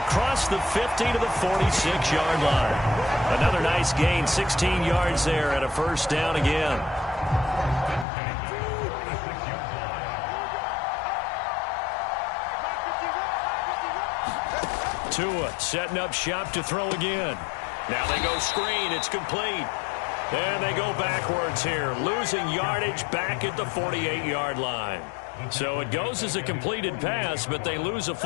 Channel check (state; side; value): drops out; right; at 8.1 s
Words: the 50 to the 46-yard line. Another nice gain, 16 yards there, and a first down again. Tua setting up shop to throw again. Now they go screen. It's complete. And they go backwards here, losing yardage back at the 48-yard line. So it goes as a completed pass, but they lose a